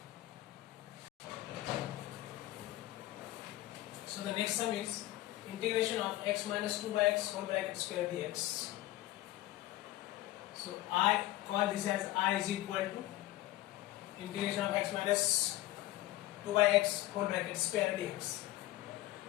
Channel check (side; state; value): right; quieter; 16.4 dB